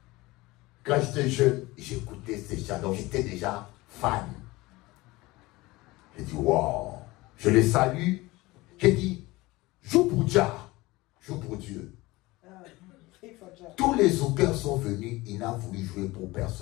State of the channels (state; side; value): quieter; right; 20.7 dB